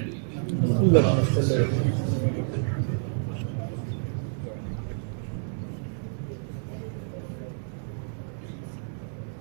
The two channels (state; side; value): silent; left; digital silence